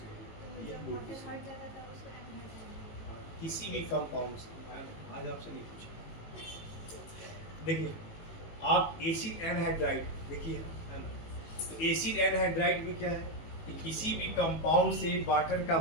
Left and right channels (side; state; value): right; late; 18 ms